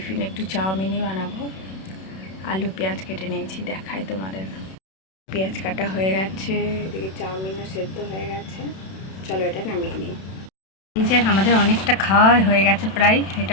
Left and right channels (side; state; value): right; late; 32 ms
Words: একটু চাউমিনই বানাবো। আলু পেঁয়াজ কেটে নিয়েছি, দেখাই তোমাদের। পেঁয়াজ কাটা হয়ে গেছে, এদিকে চাউমিনও সেদ্ধ হয়ে গেছে। চলো এটা নামিয়ে নিই। এই যে আমাদের অনেকটা খাওয়া হয়ে গেছে প্রায়।